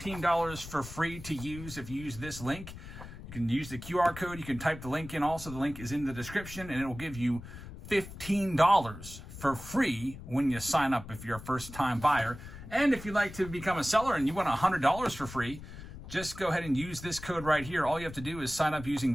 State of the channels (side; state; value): left; noise; rumble, 13 dB below the sound